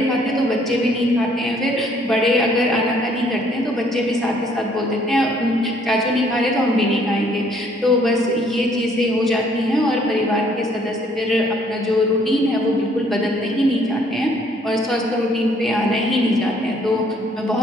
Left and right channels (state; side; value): normal; both; correlation 0.63